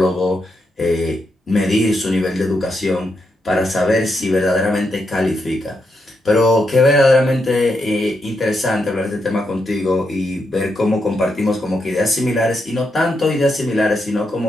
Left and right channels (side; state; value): both; normal; correlation 0.82